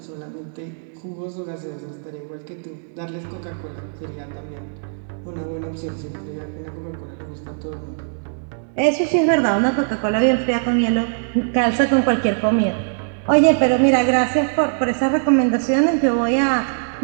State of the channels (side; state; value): left; silent; digital silence